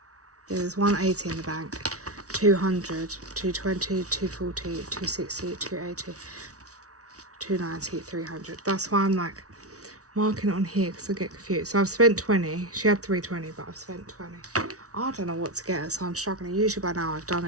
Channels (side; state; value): left; late; 0.66 ms